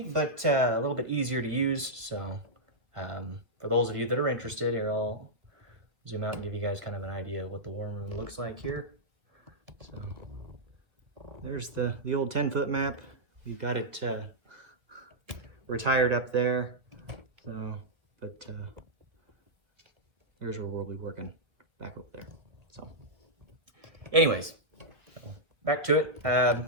but a little bit easier to use. So for those of you that are interested, here I'll zoom out and give you guys kind of an idea of what the war room looks like here. So there's the old 10-foot map. We've got it retired up there. But here's where we'll be working back over there. So anyways, back to it.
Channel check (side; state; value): left; late; 2.0 ms